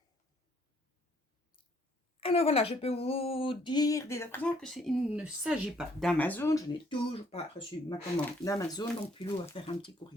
Alors voilà, je peux vous dire dès à présent que il ne s'agit pas d'Amazon. Je n'ai toujours pas reçu ma commande d'Amazon, donc Pilou va faire un petit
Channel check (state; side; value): normal; both; correlation 0.65